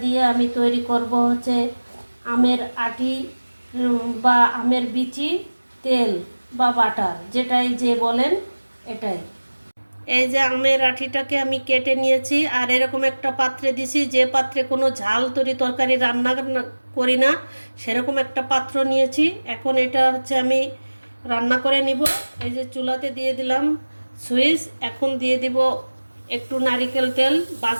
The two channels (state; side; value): inverted; both; correlation -1.00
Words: দিয়ে আমি তৈরি করব হচ্ছে আমের আটি বা আমের বিচি তেল বা বাটার, যেটাই যে বলেন এটাই। এই যে আমের আটিটাকে আমি কেটে নিয়েছি আর এরকম একটা পাত্রে দিছি, যে পাত্রে কোনো ঝাল তরকারি রান্না করি না সেরকম একটা পাত্র নিয়েছি। এখন এটা হচ্ছে আমি রান্না করে নিব। এই যে চুলাতে দিয়ে দিলাম সুইচ। এখন দিয়ে দিব একটু নারিকেল তেল,